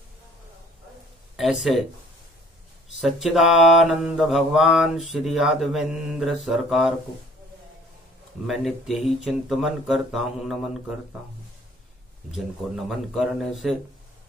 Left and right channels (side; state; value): both; normal; correlation 0.54